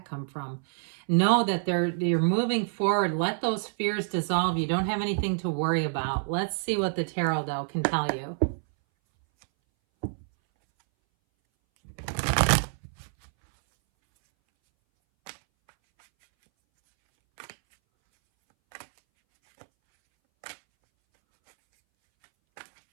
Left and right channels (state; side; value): silent; left; 60 dB below the other